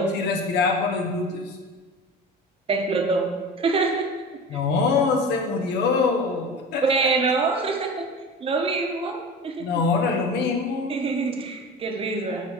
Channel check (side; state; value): both; normal; correlation 0.32